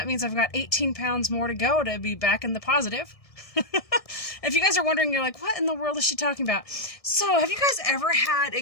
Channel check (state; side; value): late; right; 1.6 ms